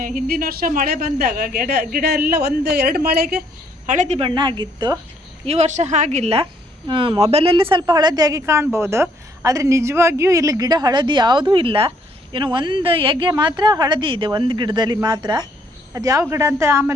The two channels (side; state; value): both; normal; correlation 0.67